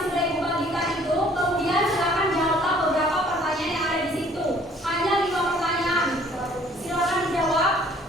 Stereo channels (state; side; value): normal; both; correlation 0.57